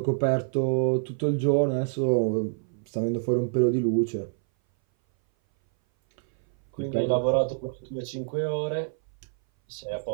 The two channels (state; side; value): silent; left; 58 dB below the other